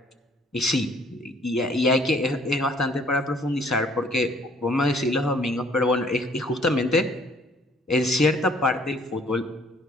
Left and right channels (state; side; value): normal; both; correlation 0.59